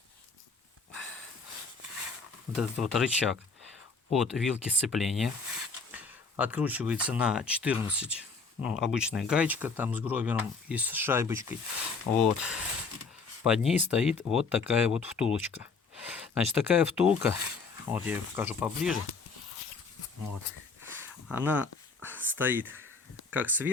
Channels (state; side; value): quieter; right; 4.6 dB